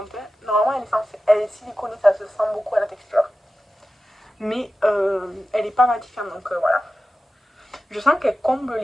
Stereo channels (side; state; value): both; normal; correlation 0.94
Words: Hein. Normalement, elle est siliconée, ça se sent beaucoup à la texture. Mais elle n'est pas matifiante, donc voilà. Je sens qu'elle comble